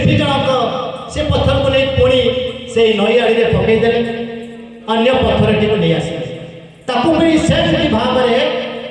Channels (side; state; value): both; identical; correlation 1.00